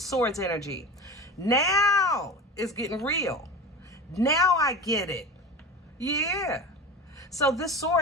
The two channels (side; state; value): both; normal; correlation 0.31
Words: energy. Now it's getting real. Now I get it. Yeah. So this